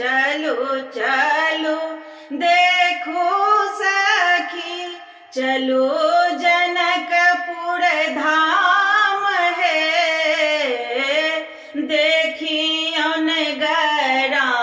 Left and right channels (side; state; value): both; identical; correlation 1.00